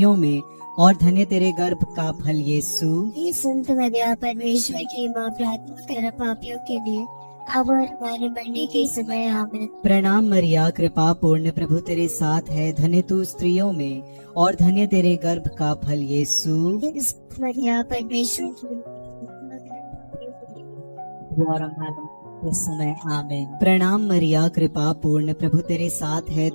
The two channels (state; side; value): inverted; both; correlation -1.00